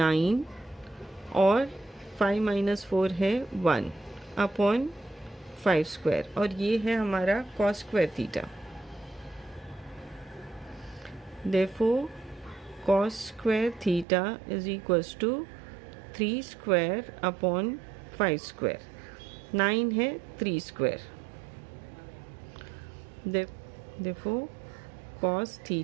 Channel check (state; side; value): drops out; left; at 14.1 s